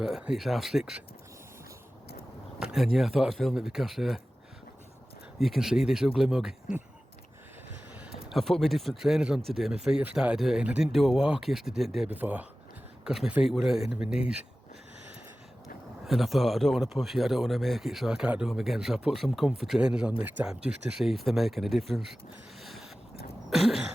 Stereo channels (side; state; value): both; normal; correlation 0.96